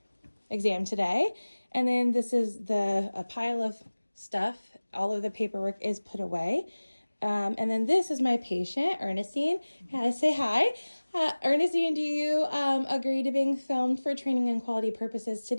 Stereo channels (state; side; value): inverted; both; correlation -1.00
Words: exam today. And then this is a pile of stuff. All of the paperwork is put away. And then this is my patient, Ernestine. Say hi. Ernestine, do you agree to being filmed for training and quality purposes